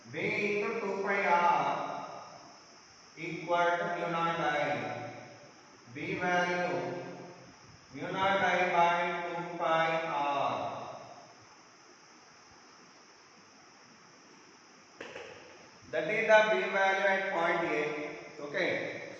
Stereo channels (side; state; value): both; identical; correlation 1.00